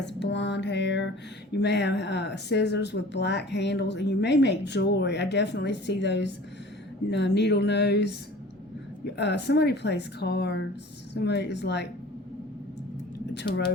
blonde hair. You may have scissors with black handles, and you may make jewelry. I definitely see those needle nose. Somebody plays cards. Somebody is like a tarot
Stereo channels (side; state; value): both; normal; correlation 0.44